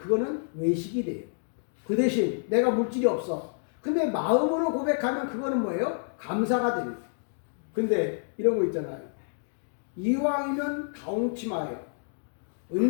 외식이 돼요. 그 대신 내가 물질이 없어. 근데 마음으로 고백하면 그거는 뭐예요? 감사가 되는 거예요. 근데 이런 거 있잖아요. 이왕이면 가홍치마요.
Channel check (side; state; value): right; silent; digital silence